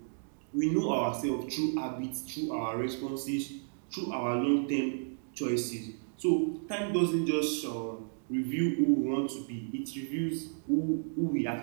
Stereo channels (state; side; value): silent; left; digital silence